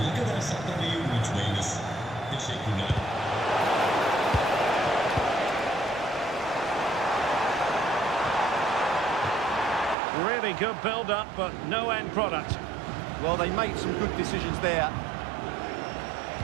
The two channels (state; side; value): drops out; left; at 10.0 s